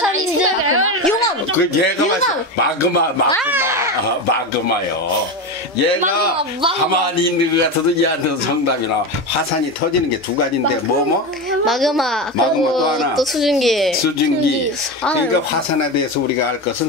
용암. 그 얘가 마그마요. 얘가 가만히 있는 것 같아도 얘한테도 정답이 나와. 화산이 터지는 게 두 가지인데 마그마. 또 그리고 하나. 또 수증기. 그러니까 화산에 대해서 우리가 알 것은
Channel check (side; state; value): both; normal; correlation 0.18